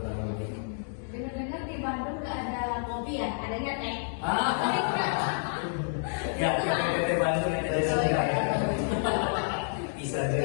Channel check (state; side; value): silent; right; digital silence